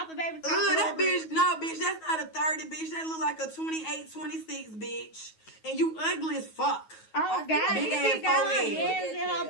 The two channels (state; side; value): late; right; 9.3 ms